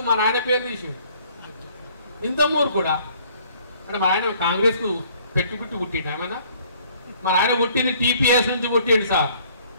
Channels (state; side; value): inverted; both; correlation -0.59